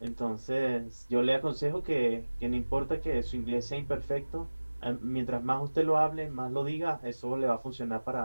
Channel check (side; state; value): both; inverted; correlation -1.00